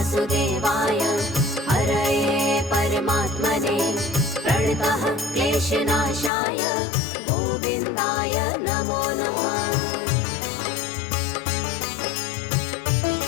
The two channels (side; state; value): right; drops out; at 6.3 s